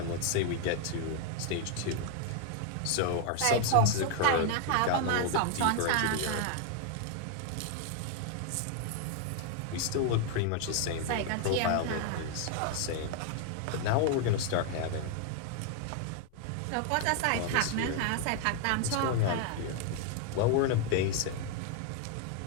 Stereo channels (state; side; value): different; both; correlation 0.00